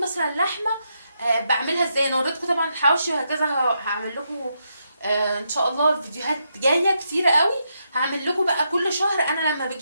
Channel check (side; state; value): both; inverted; correlation -0.81